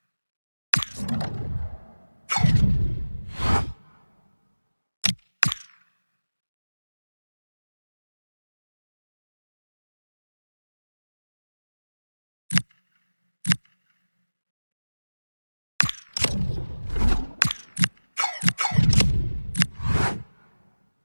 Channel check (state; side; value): inverted; both; correlation -1.00